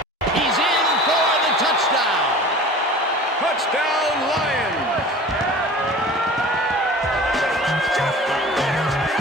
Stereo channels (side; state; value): both; normal; correlation 0.40